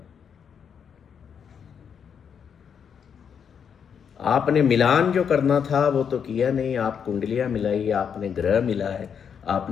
आपने मिलान जो करना था वो तो किया नहीं। आप कुंडलियां मिलाई, आपने ग्रह मिला है,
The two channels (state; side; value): quieter; right; 7.3 dB